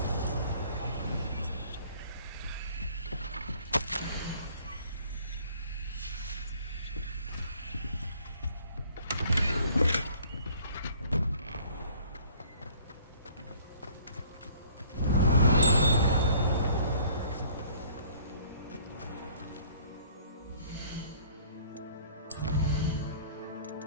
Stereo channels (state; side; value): inverted; both; correlation -0.55